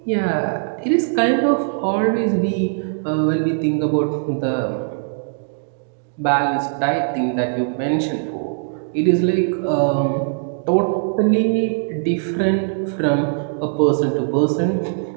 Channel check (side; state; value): left; silent; digital silence